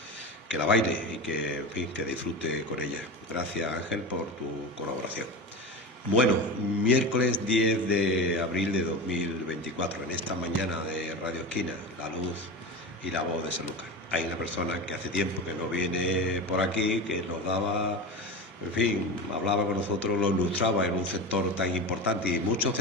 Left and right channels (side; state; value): both; normal; correlation 0.24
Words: que la baile y que, en fin, que disfrute con ella. Gracias, Ángel, por tu colaboración. Bueno, miércoles 10 de abril de 2024, en esta mañana de Radio Esquina, la luz y la voz de Sanlúcar. Hay una persona que hace tiempo que no viene por aquí, que nos daba, en fin, hablaba con nosotros, lo ilustraba en un sector tan importante y muchos